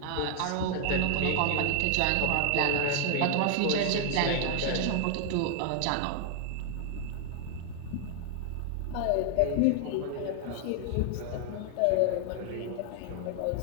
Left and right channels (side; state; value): both; different; correlation 0.00